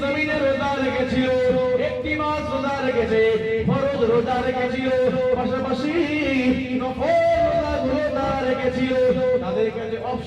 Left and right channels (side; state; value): both; identical; correlation 1.00